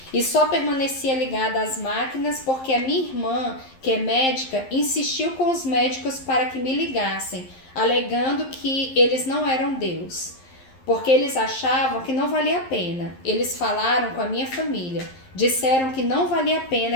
E só permanecia ligada às máquinas porque a minha irmã, que é médica, insistiu com os médicos para que me ligassem, alegando que eles não eram Deus. Porque eles achavam que não valia a pena. Eles falaram com a minha família. Disseram que não valia a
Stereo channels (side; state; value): right; late; 11 ms